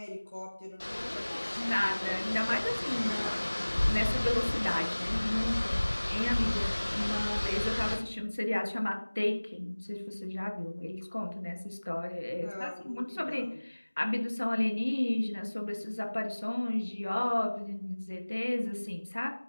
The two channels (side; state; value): both; inverted; correlation -1.00